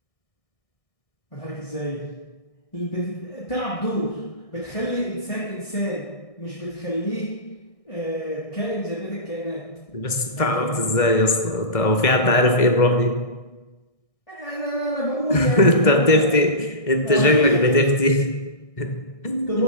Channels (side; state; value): right; late; 1.6 ms